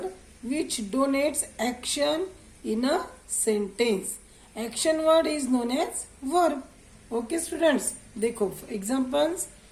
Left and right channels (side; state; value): both; identical; correlation 1.00